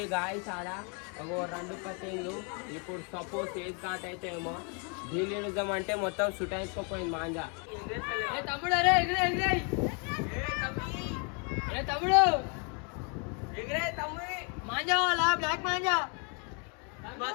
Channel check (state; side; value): quieter; right; 37.2 dB